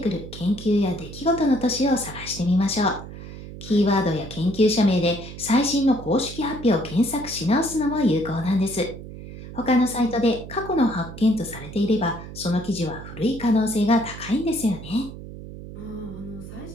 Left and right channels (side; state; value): right; noise; hum, 12 dB below the sound